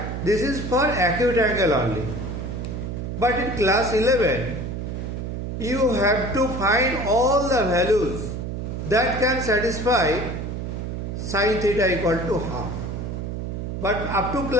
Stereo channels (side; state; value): right; noise; hum, 5 dB below the sound